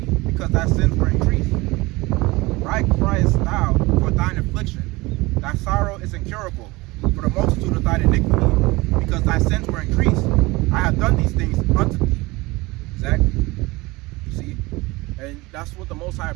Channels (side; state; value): left; quieter; 22.1 dB